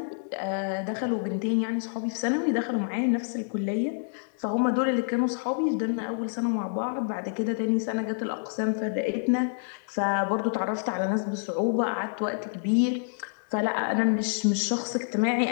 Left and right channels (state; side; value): silent; right; digital silence